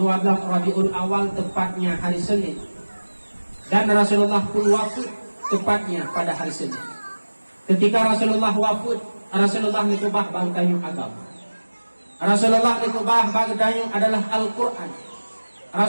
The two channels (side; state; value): both; inverted; correlation -1.00